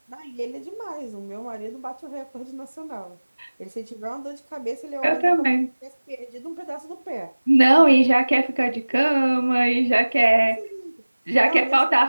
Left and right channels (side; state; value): both; inverted; correlation -1.00